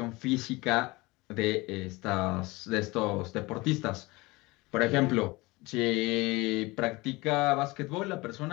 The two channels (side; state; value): right; quieter; 22.8 dB